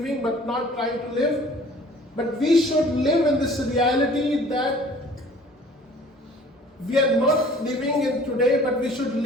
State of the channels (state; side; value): normal; both; correlation 0.50